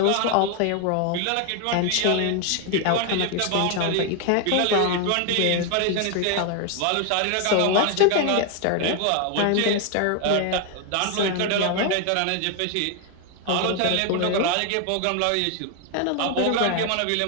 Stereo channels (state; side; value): different; both; correlation 0.01